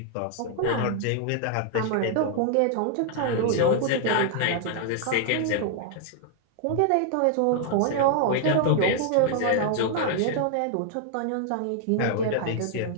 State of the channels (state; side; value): different; both; correlation 0.00